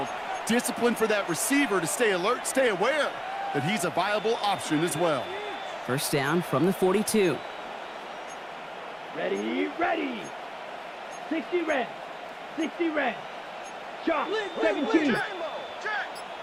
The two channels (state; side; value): identical; both; correlation 1.00